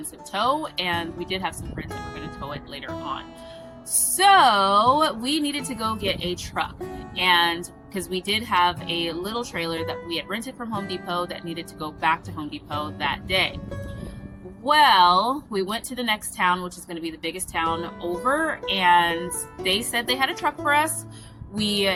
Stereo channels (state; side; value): identical; both; correlation 1.00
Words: tow, and we did have some friends that were going to tow it later on. So we needed to go get a truck, and because we did have a little trailer that we had rented from Home Depot that needed to go back to Home Depot that day. Well, we went to the next town, which is going to be the biggest town over, and they said they had a truck for us. We